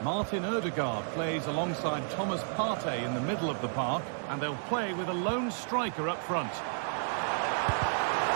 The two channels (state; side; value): silent; left; digital silence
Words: Martin Odegaard plays alongside Thomas Partey in the middle of the park, and they'll play with a lone striker up front.